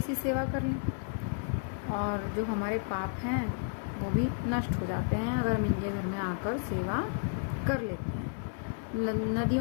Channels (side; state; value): right; silent; digital silence